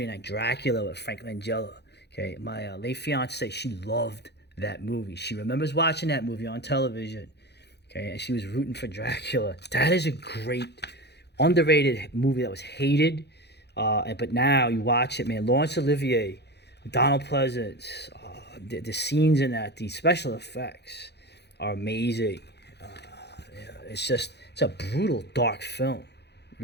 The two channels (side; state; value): right; late; 0.49 ms